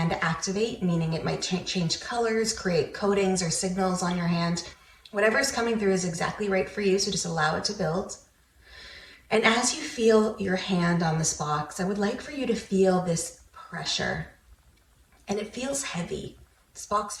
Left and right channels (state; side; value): identical; both; correlation 1.00